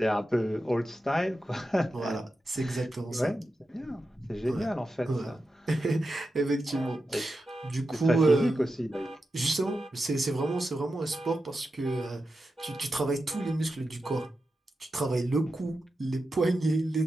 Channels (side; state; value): both; normal; correlation 0.90